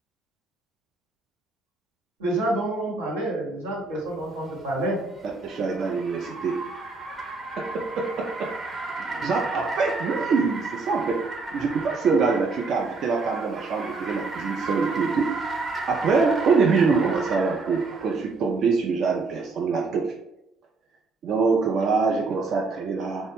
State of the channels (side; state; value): left; quieter; 4.0 dB